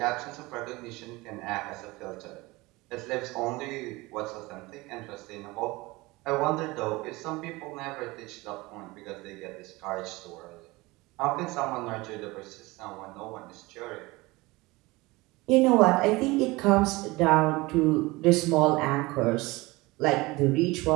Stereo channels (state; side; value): quieter; left; 22.1 dB